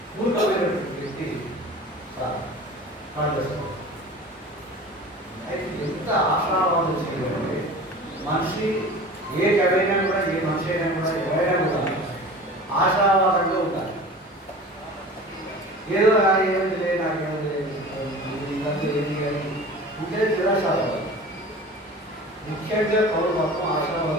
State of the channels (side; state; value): both; normal; correlation 0.39